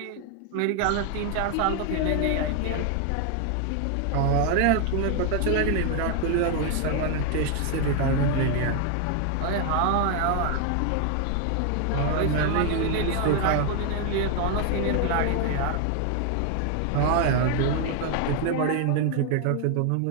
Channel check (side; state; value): both; different; correlation 0.00